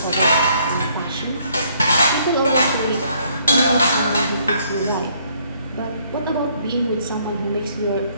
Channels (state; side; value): inverted; both; correlation -0.66